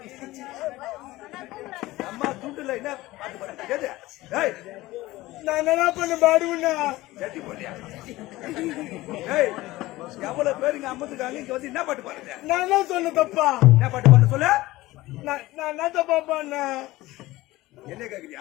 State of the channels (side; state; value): right; quieter; 18.3 dB